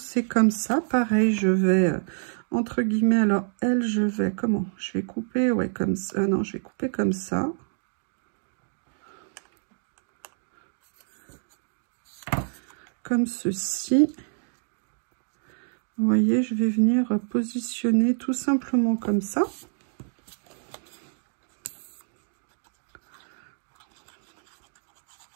comme ça. Pareil, je vais, entre guillemets, alors elle, je vais, comment? Je vais couper, ouais, comme ça. Non, je vais couper comme ça. Comme ceci. Vous voyez, je vais venir positionner tout simplement comme ça.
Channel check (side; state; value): left; silent; digital silence